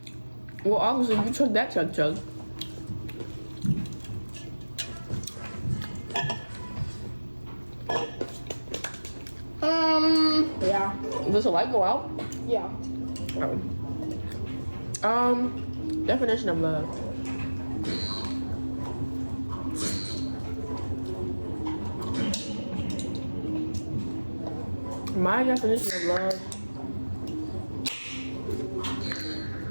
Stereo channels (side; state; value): both; inverted; correlation -1.00